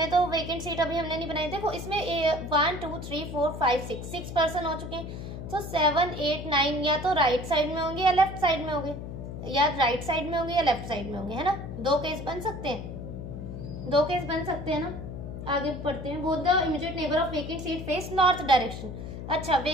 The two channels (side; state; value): left; noise; hum, 8 dB below the sound